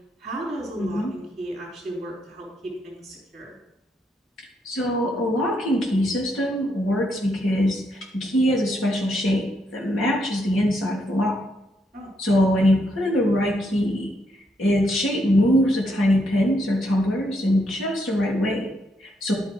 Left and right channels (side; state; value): both; normal; correlation 0.77